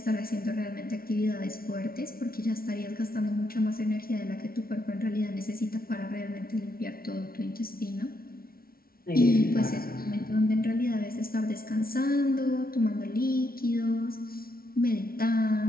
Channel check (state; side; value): late; right; 0.43 ms